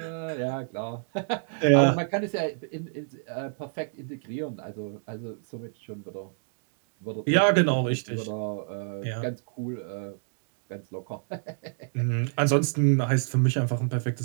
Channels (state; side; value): silent; left; digital silence